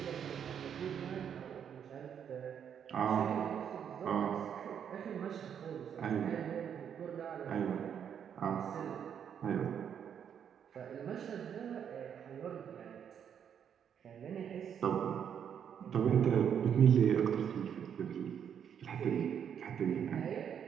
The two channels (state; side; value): quieter; left; 8.3 dB